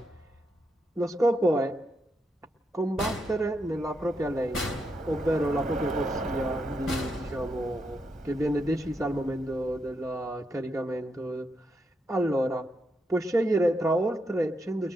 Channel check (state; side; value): normal; both; correlation 0.82